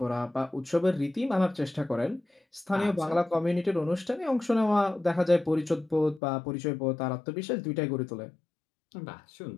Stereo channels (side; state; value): right; drops out; at 6.2 s